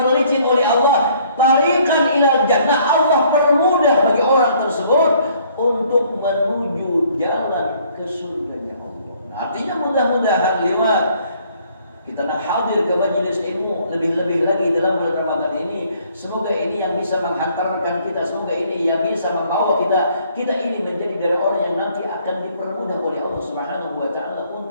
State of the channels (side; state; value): both; inverted; correlation -0.62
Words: oleh Allah, tariqan ilal jannah, Allah permudah bagi orang tersebut untuk menuju jalan ke surganya Allah. Nah, artinya mudah-mudahan lewat kita nak hadir ke majelis ilmu, lebih-lebih lagi dalam bulan Ramadan ini, semoga ini yang bisa menghantarkan kita, semoga ini yang bisa membawa kita ini menjadi dari orang yang nanti akan dipermudah oleh Allah Subhanahu wa taala